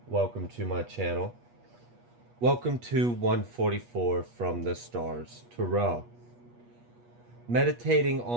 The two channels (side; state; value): left; late; 8.3 ms